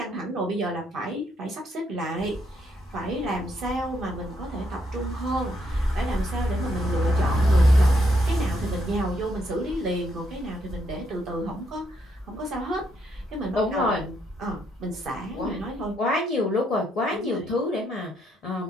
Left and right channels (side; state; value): both; normal; correlation 0.75